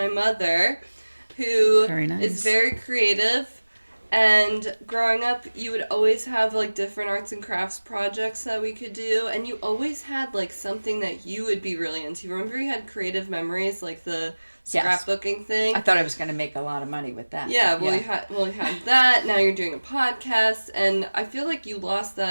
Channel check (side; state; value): both; inverted; correlation -1.00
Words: mother, who Very nice. is very creative. And growing up, you would always have like different arts and crafts projects that we could do, and you always had like something that you would be really into. Remember, you had creative memories, like the Yes. scrapbooking thing. I thought I was going to make a lot of money with that. Yeah, but you had that. Now you're doing a podcast, and I feel like you lost